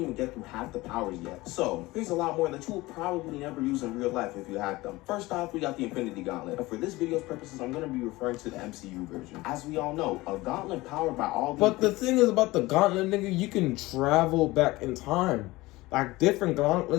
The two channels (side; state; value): right; quieter; 20.1 dB